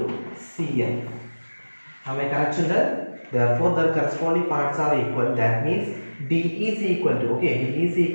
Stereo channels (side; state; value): both; inverted; correlation -1.00